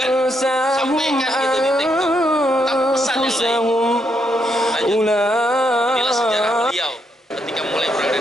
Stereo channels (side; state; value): both; normal; correlation 0.77